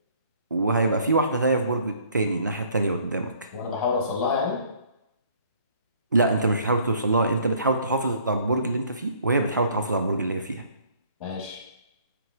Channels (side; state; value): both; inverted; correlation -0.59